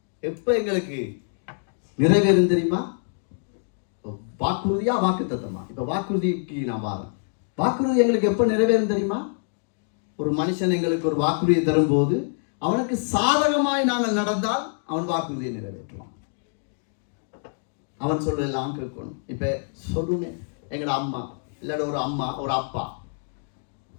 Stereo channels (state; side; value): silent; right; digital silence